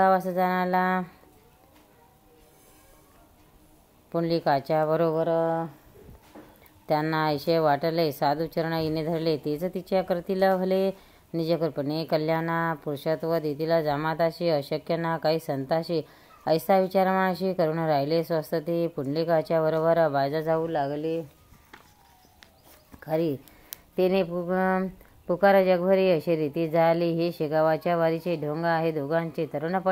जाण्याला पुंडलिकाच्या बरोबर त्यांना ऐशे वाटले. साधू चरण हिने धरले, तेच तिच्या करतील भले. निजकृपणे कल्याणा पुरुषत्व देतील जामाताशी, अशक्य ना काही संताशी. ऐसा विचार मनाशी करून राहिले स्वस्त ते. पुंडलिकाच्या बरोबर बायजा जाऊ लागले. खरी तिने पुकार जगभरी अशी रीती झाली. हे शेगावाच्या वारीचे ढोंग आहे दोघांचे,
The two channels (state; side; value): identical; both; correlation 1.00